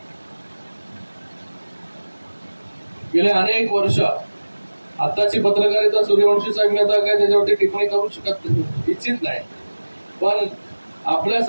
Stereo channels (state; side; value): inverted; both; correlation -1.00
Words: गेले अनेक वर्ष, आताची पत्रकारिता सूर्यवंशी साहेब मी आता काय त्याच्यावरती टिप्पणी करू शकत इच्छित नाही, पण